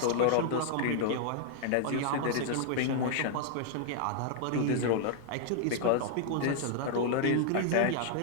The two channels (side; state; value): both; different; correlation -0.01